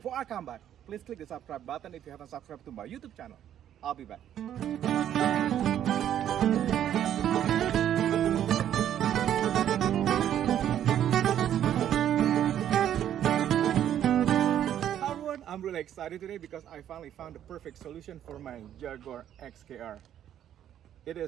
I come back, please click the subscribe button if you haven't subscribed to my YouTube channel. I'll be back. Hi everyone, I'm really excited today because I finally found the perfect solution for my Jaguar XKR. It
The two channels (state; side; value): quieter; left; 10.6 dB